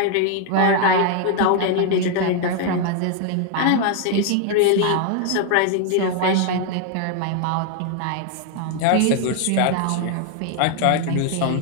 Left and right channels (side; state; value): both; different; correlation 0.00